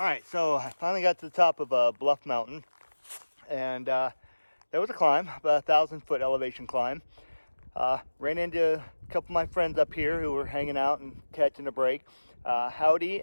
right, so I finally got to the top of Bluff Mountain, and there was a climb, about 1,000-foot elevation climb. Ran into a couple of my friends up here who were hanging out and catching a break. Howdy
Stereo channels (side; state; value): both; inverted; correlation -1.00